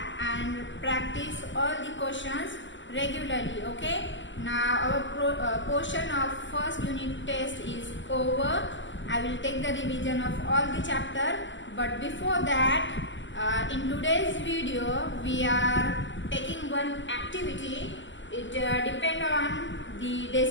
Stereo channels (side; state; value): right; late; 0.54 ms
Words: and practice all the questions regularly. Okay. Now our portion of first unit test is over. I will take the revision of all the chapter. But before that, in today's video we are taking one activity. It depends on the